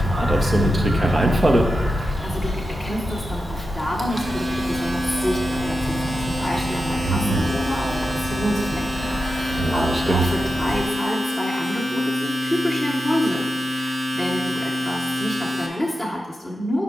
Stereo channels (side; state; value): both; normal; correlation 0.90